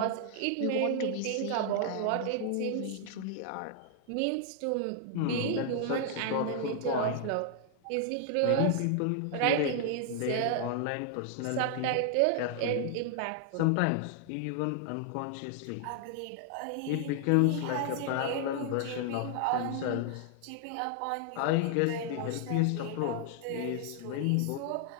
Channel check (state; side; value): different; both; correlation 0.00